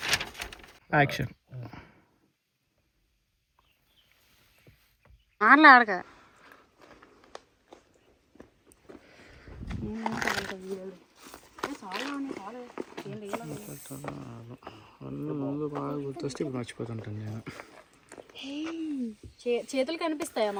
యాక్షన్. మాట్లాడక ముందు బాగా గుర్తొస్తే ఇప్పుడు మర్చిపోతుంటాను నేను. చేతులు కనిపిస్తాయా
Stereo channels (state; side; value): identical; both; correlation 1.00